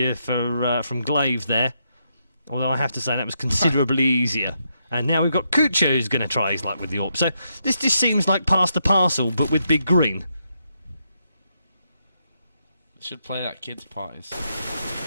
from Glaive there. Although I have to say that was considerably easier. And now we've got Kucha who's going to try his luck with the AWP. So this just seems like pass the parcel, but with Big Green. Should play that kids' parties.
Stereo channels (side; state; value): both; inverted; correlation -0.80